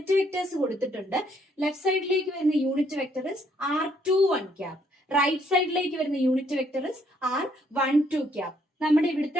വെക്ടേഴ്സ് കൊടുത്തിട്ടുണ്ട്. ലെഫ്റ്റ് സൈഡിലേക്ക് വരുന്ന unit vector R21 cap, right സൈഡിലേക്ക് വരുന്ന യൂണിറ്റ് വെക്ടർ R12 ക്യാപ്. നമ്മുടെ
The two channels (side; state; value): both; normal; correlation 0.69